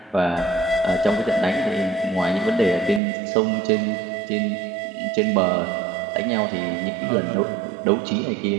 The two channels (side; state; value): left; drops out; at 3.0 s